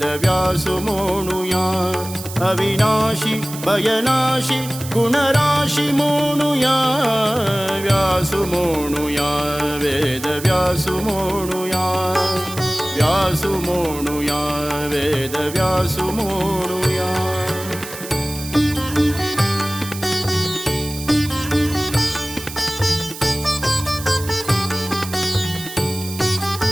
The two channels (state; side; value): noise; right; hiss, 12 dB below the sound